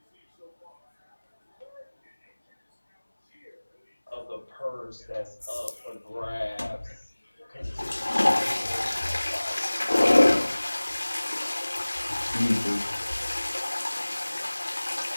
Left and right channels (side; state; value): both; inverted; correlation -1.00